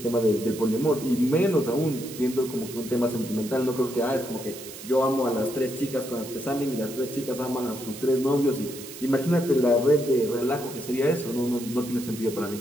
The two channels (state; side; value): noise; right; hiss, 14 dB below the sound